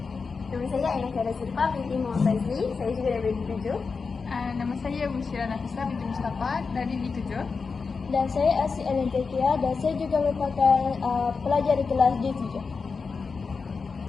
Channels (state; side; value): quieter; right; 4.9 dB